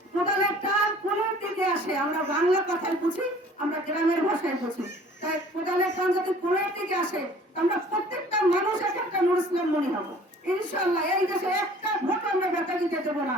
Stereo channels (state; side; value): normal; both; correlation 0.51